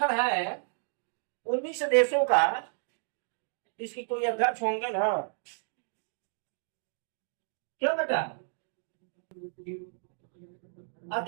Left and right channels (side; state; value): left; silent; digital silence